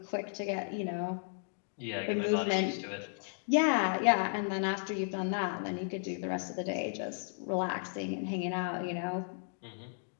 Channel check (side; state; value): right; silent; digital silence